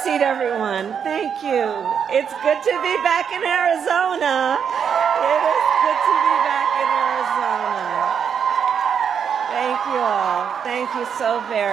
seat, everyone. Thank you. It's good to be back in Arizona. It is good to be back in Arizona. Thank you all. Thank you so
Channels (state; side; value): quieter; left; 7.4 dB